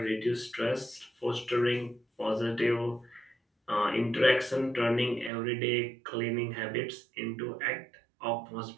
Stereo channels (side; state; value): left; drops out; at 5.3 s